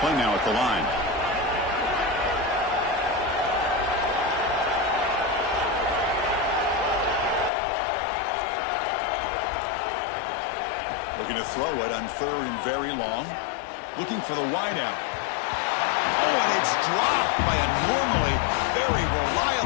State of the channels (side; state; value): right; drops out; at 7.5 s